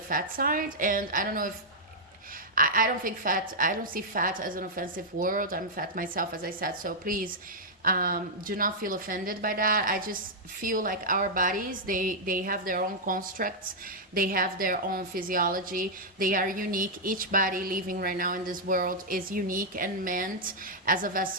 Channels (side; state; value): both; normal; correlation -0.06